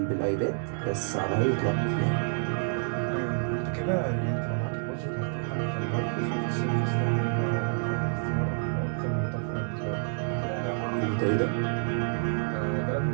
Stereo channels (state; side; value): silent; left; 59 dB below the other